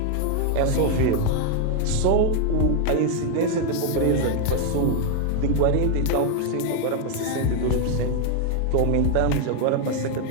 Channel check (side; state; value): both; different; correlation 0.00